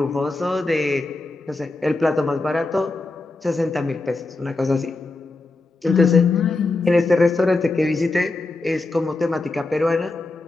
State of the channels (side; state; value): right; quieter; 3.2 dB